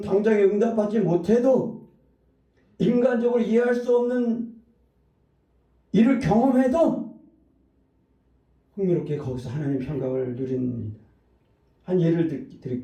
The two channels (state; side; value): identical; both; correlation 1.00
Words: 당장에 응답받지 못해도 인간적으로 이해할 수 없는 일을 경험해도 흥미롭게 거기서 하나님의 평강을 누립니다. 한 예를